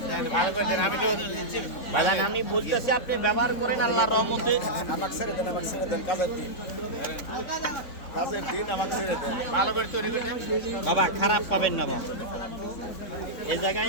বাজান আমি বলতেছি আপনি ব্যবহার করেন আল্লাহর রহমতে। আমাকে ছেড়ে দেন কাজের দিন আমাকে ছেড়ে দেন। ভালো করে তৈরি করে বাবা, খারাপ পাবেন না বাবা। এই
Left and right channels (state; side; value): late; right; 3.6 ms